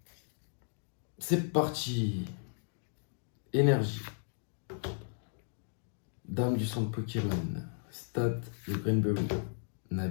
C'est parti. Énergie. Dame du centre Pokémon. Stade de Greenberry.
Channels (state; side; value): silent; right; digital silence